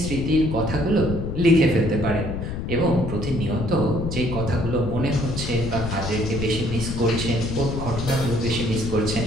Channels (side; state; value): left; noise; rumble, 5 dB below the sound